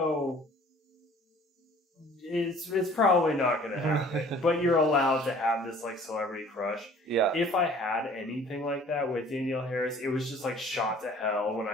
it's probably not going to happen, but you're allowed to have this like celebrity crush. Yeah. If I had anything like that with Danielle Harris, it was just like shot to hell when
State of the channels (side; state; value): both; normal; correlation 0.51